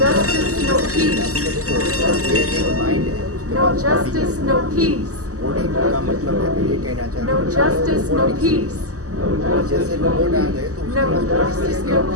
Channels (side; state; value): left; late; 0.66 ms